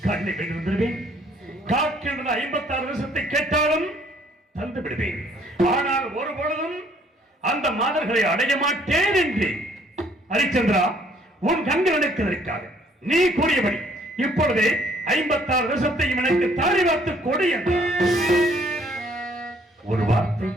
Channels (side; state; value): both; normal; correlation 0.62